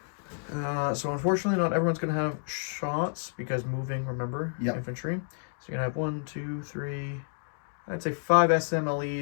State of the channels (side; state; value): right; silent; digital silence